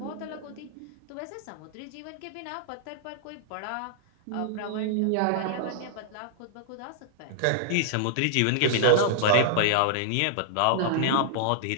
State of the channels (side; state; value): both; different; correlation -0.01